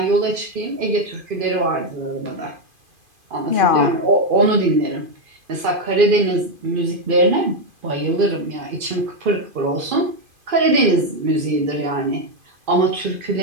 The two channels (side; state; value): left; late; 2.5 ms